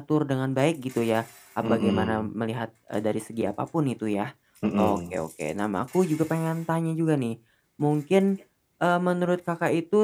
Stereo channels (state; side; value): identical; both; correlation 1.00